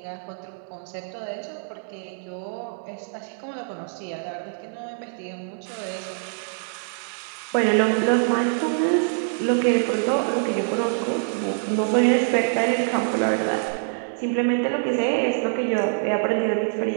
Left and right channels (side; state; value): left; silent; digital silence